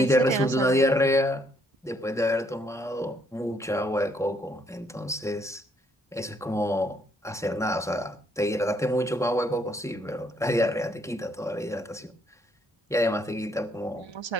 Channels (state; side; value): normal; both; correlation 0.69